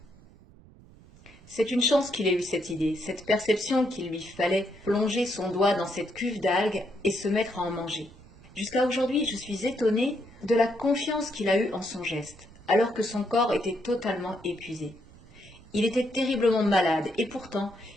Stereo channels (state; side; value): noise; right; rumble, 23 dB below the sound